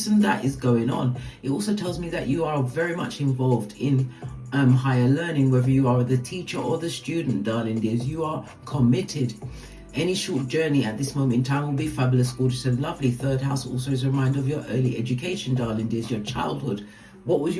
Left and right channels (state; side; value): identical; both; correlation 1.00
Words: and that is going on. It also tells me that you are very much involved in higher learning, whether you are the teacher or the student, darling dears. You are committed. Any short journey at this moment in time will be fabulous, gorgeous and lovely. Third house also is a reminder of your early education, darling dears, your childhood. What was